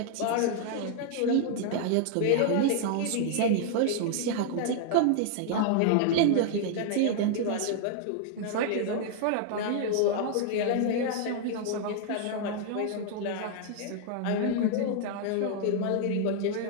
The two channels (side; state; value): both; different; correlation 0.00